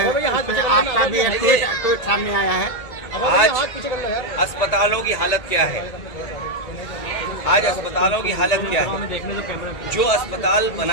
आपका भी एक ट्वीट सामने आया है। आज अस्पतालों की हालत क्या है? आज अस्पतालों की हालत क्या है? जो अस्पताल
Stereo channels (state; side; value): late; right; 1.9 ms